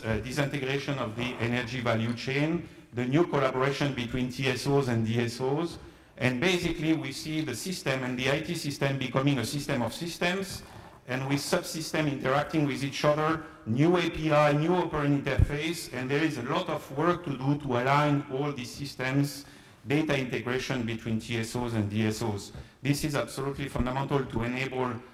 disintegration of the energy value chain, the new collaboration between TSOs and DSOs, And basically, we see the system and the IT system becoming a system of systems, and with subsystems interacting with each other, new API, new operating interface, and there is a lot of work to do to align all these systems, data integration between TSOs and DSOs. This is absolutely fundamental to enable,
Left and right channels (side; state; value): both; identical; correlation 1.00